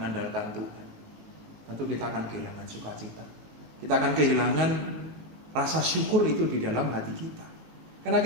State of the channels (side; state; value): left; late; 19 ms